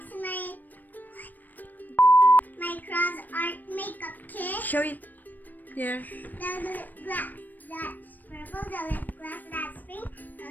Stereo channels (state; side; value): late; right; 0.087 ms